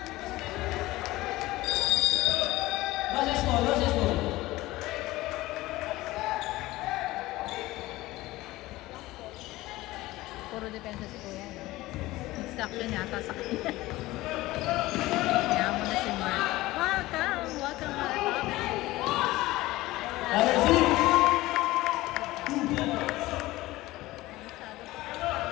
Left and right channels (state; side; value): quieter; right; 18.3 dB